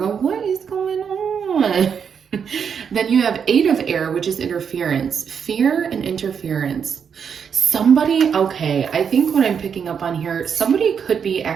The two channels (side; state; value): left; quieter; 7.1 dB